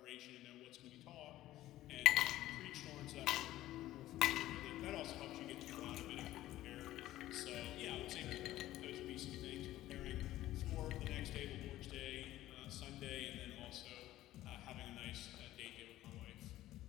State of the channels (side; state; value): right; quieter; 14.9 dB